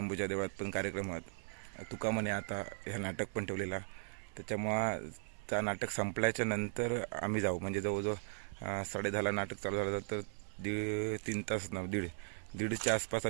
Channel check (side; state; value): left; silent; 52 dB below the other